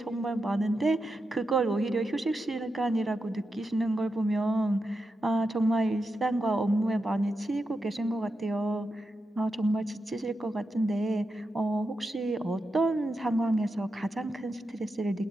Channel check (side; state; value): both; normal; correlation 0.88